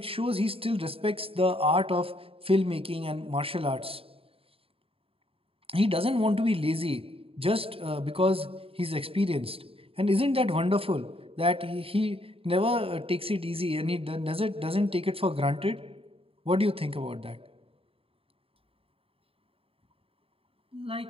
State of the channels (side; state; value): left; late; 0.27 ms